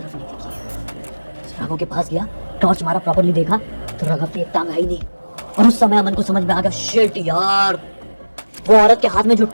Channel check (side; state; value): both; inverted; correlation -1.00